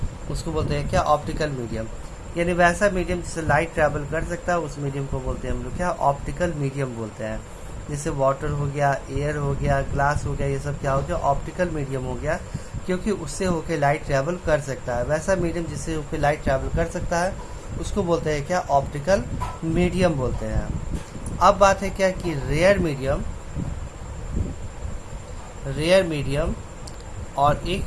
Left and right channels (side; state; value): both; identical; correlation 1.00